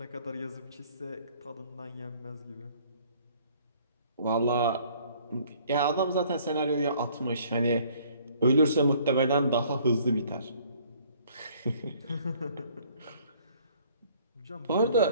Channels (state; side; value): inverted; both; correlation -0.58